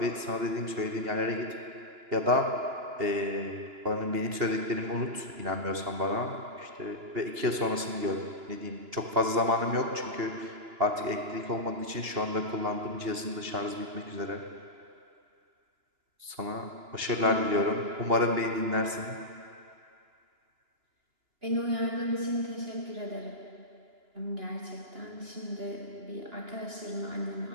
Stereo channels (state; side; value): late; left; 2.9 ms